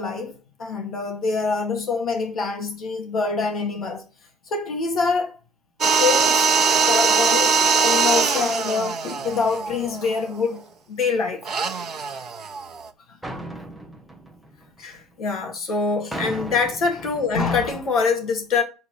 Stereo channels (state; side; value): normal; both; correlation 0.56